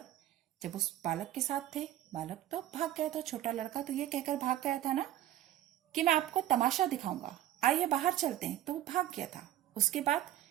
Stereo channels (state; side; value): quieter; left; 13.0 dB